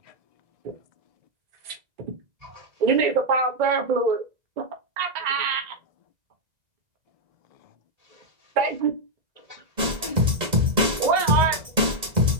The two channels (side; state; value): left; late; 1.9 ms